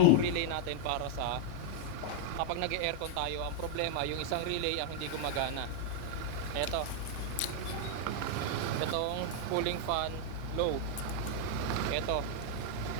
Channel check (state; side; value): different; both; correlation -0.01